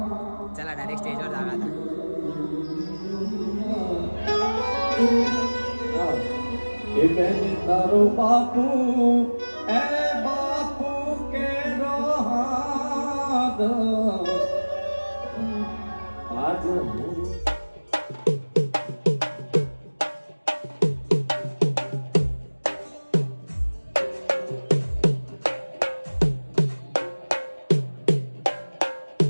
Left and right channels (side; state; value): both; inverted; correlation -1.00